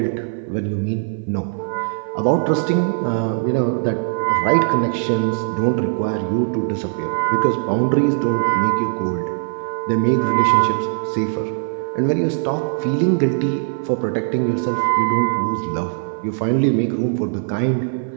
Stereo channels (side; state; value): left; silent; 56 dB below the other